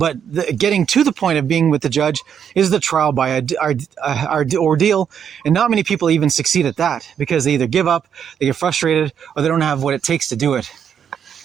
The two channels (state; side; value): quieter; left; 8.1 dB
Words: getting to the point of being with the judge is the trial by our ordeal, and not many people even succeed at that because they either give up, they get frustrated, or they don't have what it takes to do it.